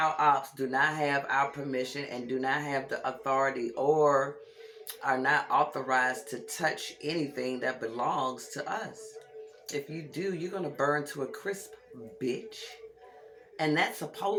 ops, do not have our permission and do not have the authority or are not authorized to touch anything that belongs to us. If you do, you're going to burn to a crisp, bitch. And that's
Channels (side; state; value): both; identical; correlation 1.00